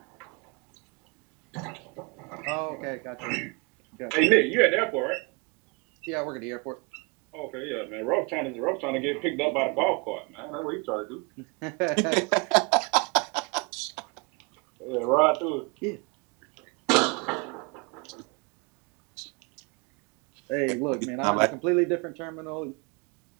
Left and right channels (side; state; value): left; quieter; 30.9 dB